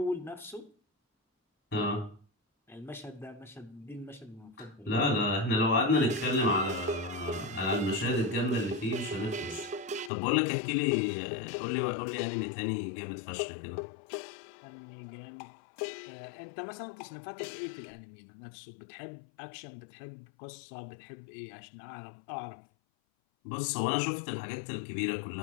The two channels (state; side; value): drops out; right; at 10.1 s